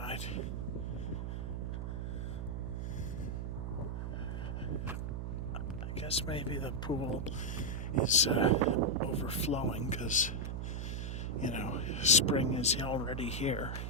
I guess maybe the pool is overflowing because, spring is already here.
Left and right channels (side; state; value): right; noise; hum, 3 dB below the sound